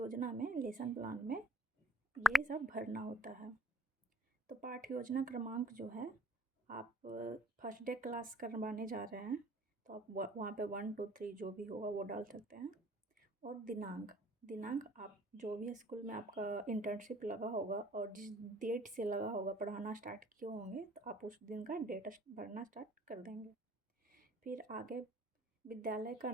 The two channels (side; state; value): both; normal; correlation 0.57